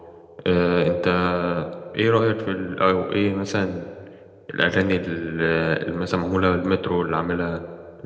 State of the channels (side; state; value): both; identical; correlation 1.00